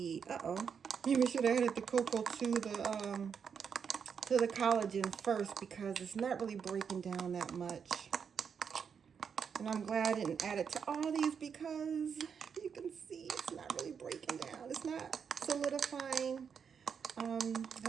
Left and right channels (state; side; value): quieter; left; 6.8 dB